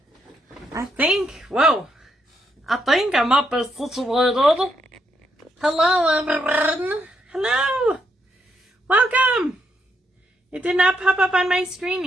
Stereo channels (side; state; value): both; normal; correlation 0.78